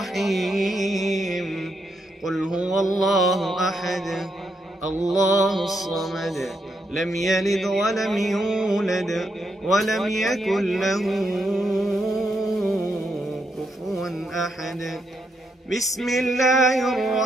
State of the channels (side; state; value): both; normal; correlation 0.80